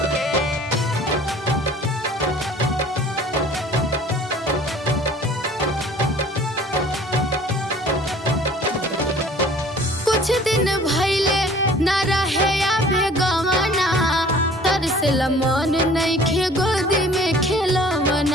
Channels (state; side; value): normal; both; correlation 0.50